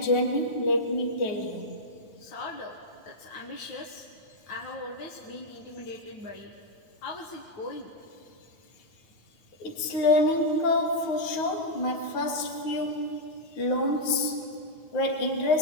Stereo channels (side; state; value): right; late; 9.5 ms